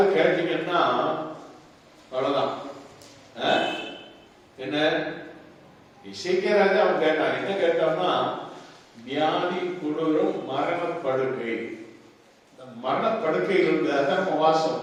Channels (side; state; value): both; identical; correlation 1.00